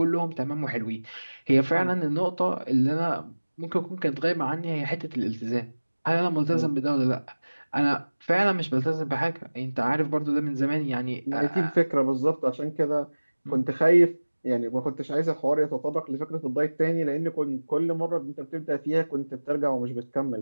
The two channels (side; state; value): both; inverted; correlation -1.00